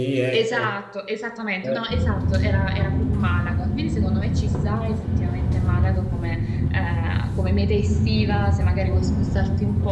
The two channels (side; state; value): both; identical; correlation 1.00